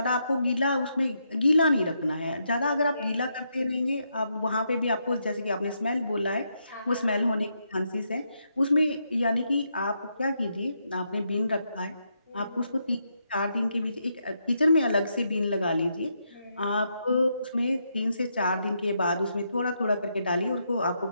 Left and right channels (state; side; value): inverted; both; correlation -0.80